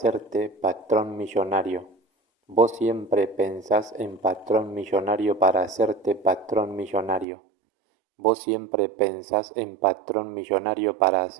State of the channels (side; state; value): left; drops out; at 7.2 s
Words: patrón millonario. Vos siempre pensás en patrón millonario para hacerte patrón millonario. Vos siempre pensás en patrón millonario para